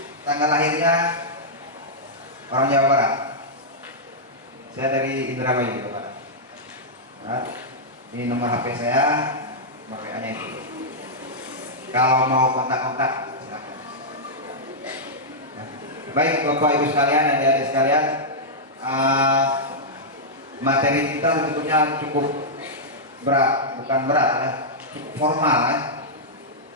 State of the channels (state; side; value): normal; both; correlation -0.09